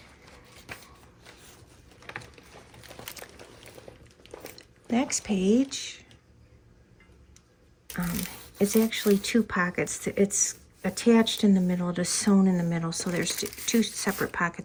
Next page is actually two pockets. It's attached in the middle, it is sewn in the middle, so there's two separate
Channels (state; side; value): identical; both; correlation 1.00